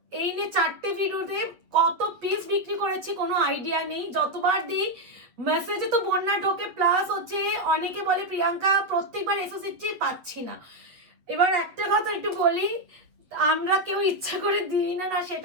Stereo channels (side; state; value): left; late; 8.3 ms